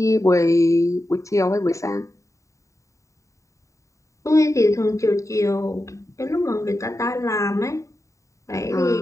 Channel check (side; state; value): right; late; 0.15 ms